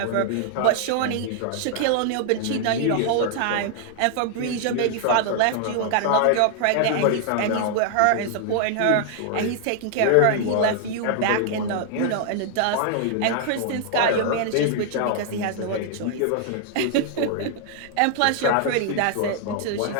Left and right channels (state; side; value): different; both; correlation -0.01